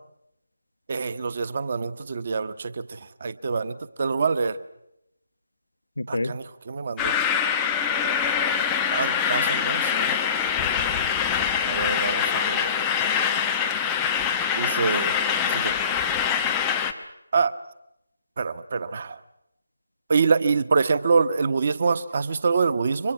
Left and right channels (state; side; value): inverted; both; correlation -0.51